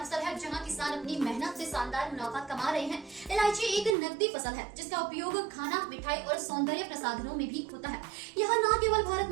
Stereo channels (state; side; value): drops out; left; at 4.0 s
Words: है जहां किसान अपनी मेहनत से शानदार मुनाफा कमा रहे हैं। इलायची एक नकदी फसल है जिसका उपयोग खाना, मिठाई और सौंदर्य प्रसाधनों में भी होता है। यह न केवल भारत